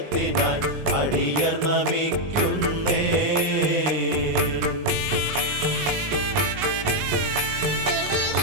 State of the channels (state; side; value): late; left; 19 ms